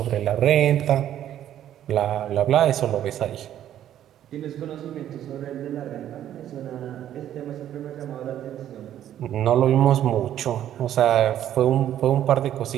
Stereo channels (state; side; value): quieter; left; 11.3 dB